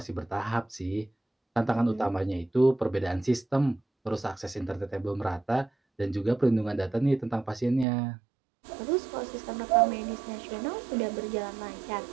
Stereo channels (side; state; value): left; drops out; at 7.9 s